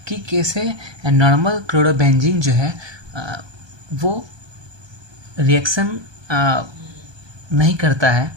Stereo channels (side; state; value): left; late; 1.2 ms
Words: कि कैसे नॉर्मल क्लोरोबेंजीन जो है वो रिएक्शन नहीं करता है